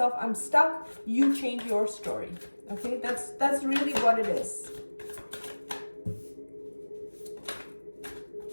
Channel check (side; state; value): both; inverted; correlation -1.00